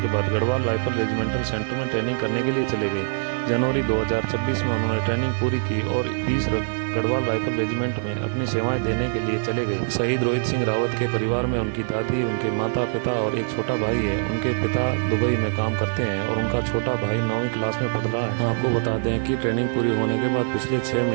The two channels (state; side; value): silent; left; digital silence